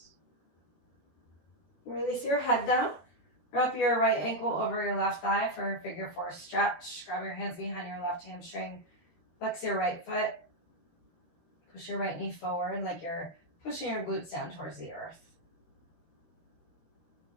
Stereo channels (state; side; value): late; right; 13 ms